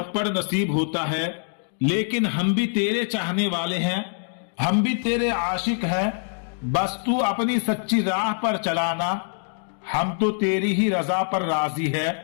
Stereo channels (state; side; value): silent; right; 59 dB below the other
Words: نصیب ہوتا ہے، لیکن ہم بھی تیرے چاہنے والے ہیں، ہم بھی تیرے عاشق ہیں، بس تو اپنی سچی راہ پر چلانا، ہم تو تیری ہی رضا پر راضی ہے۔